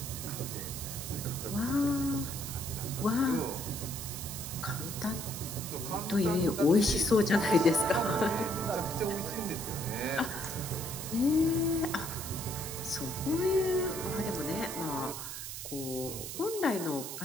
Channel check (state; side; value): noise; right; hiss, 7 dB below the sound